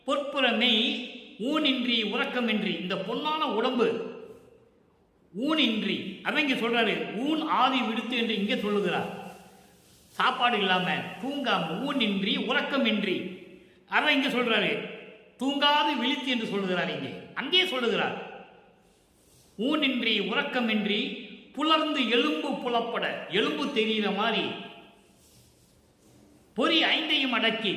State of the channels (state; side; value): identical; both; correlation 1.00